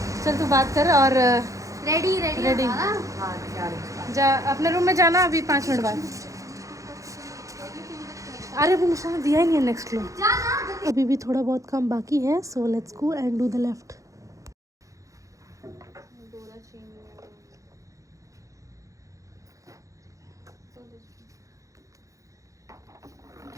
चल तू बात कर और रेडी रेडी हां क्या है? जा अपने रूम में जाना अभी 5 मिनट बाद। अरे वो निशान दिया ही नहीं है नेक्स्ट रूम। अभी भी थोड़ा बहुत काम बाकी है, so let's go and do the left.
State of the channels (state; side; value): late; left; 0.16 ms